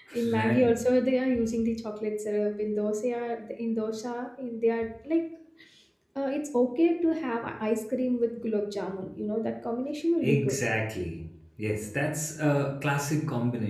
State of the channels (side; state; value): both; identical; correlation 1.00